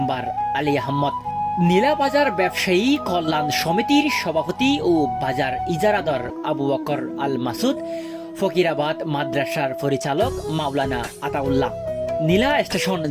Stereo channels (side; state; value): both; identical; correlation 1.00